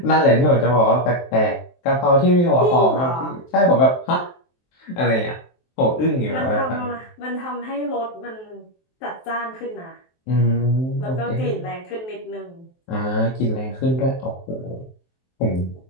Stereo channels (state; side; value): late; right; 23 ms